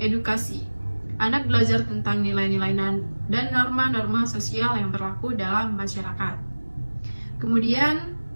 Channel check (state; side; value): inverted; both; correlation -1.00